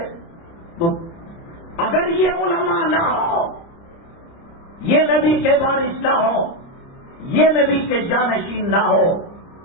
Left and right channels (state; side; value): late; right; 30 ms